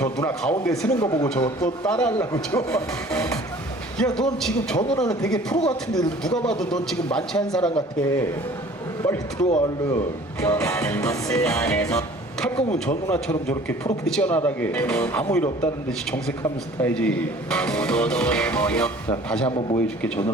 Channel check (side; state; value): both; normal; correlation 0.50